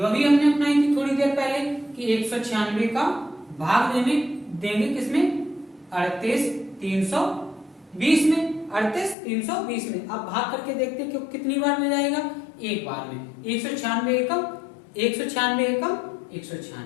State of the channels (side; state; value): right; drops out; at 9.2 s